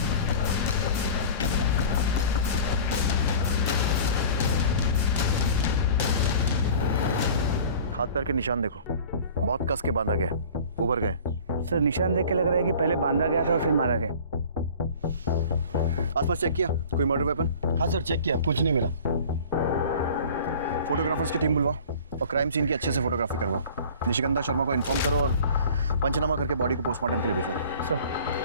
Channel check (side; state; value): both; inverted; correlation -0.43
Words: हाथ पैर के निशान देखो, बहुत कस के बांधा गया, उभर गए। सर निशान देख के लग रहा है कि पहले बांधा गया था और फिर मारा गया। आसपास चेक किया कोई मर्डर वेपन? हाँ सर, चेक किया, कुछ नहीं मिला। फोटोग्राफर्स की टीम बुलवाओ और क्राइम सीन की अच्छे से फोटोग्राफी करवाओ। निशिगंधा शर्मा को इन्फॉर्म करो और पंचनामा करके बॉडी को पोस्टमार्टम के लिए भेजो। सर।